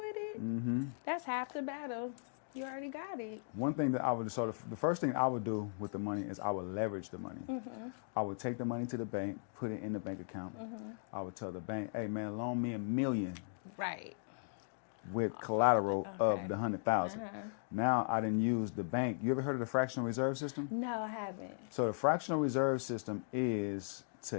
it, that's half the battle. You already got it. One thing that the first thing I would do with the money is I would leverage the money. I would take the money to the bank, put it in the bank account. I would tell the bank, hey man, loan me $1 million. Right. With collateral of the 100,000. Now I didn't use the bank. You ever heard of the fractional reserve system? No, I haven't. So the fractional reserve system is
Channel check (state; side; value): silent; right; digital silence